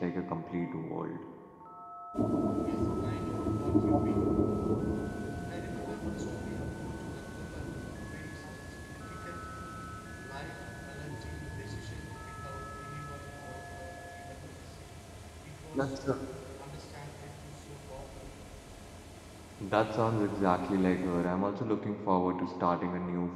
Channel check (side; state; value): both; identical; correlation 1.00